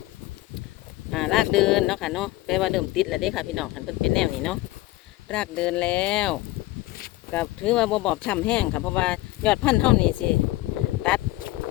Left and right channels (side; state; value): right; quieter; 18.0 dB